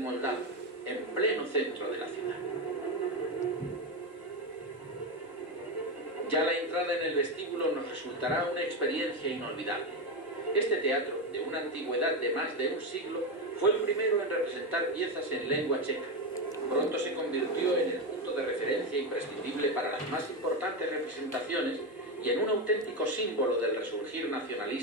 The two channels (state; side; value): normal; both; correlation 0.12